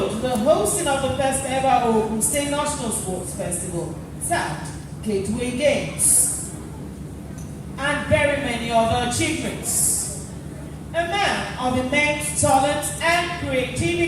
the hosting of the first ever Ogun State National Sports Festival, tagged Gateway Games, and very many other achievements. A man of immense talent and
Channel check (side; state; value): both; identical; correlation 1.00